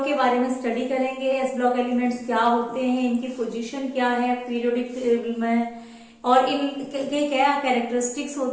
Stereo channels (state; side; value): identical; both; correlation 1.00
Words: के बारे में study करेंगे। S block elements क्या होते हैं, इनकी पोजीशन क्या है पीरियोडिक टेबल में, और इनके क्या कैरेक्टरिस्टिक्स